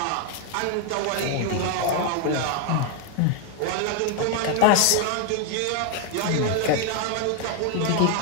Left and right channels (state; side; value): different; both; correlation 0.01